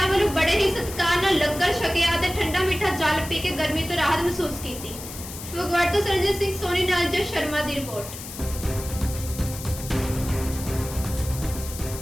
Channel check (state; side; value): noise; left; hiss, 11 dB below the sound